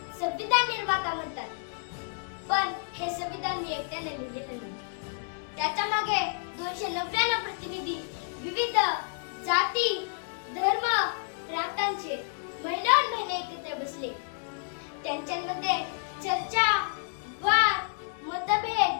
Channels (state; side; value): silent; right; 58 dB below the other